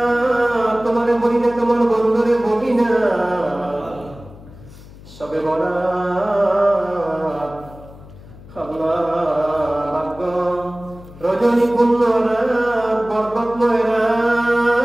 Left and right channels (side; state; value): left; noise; hum, 19 dB below the sound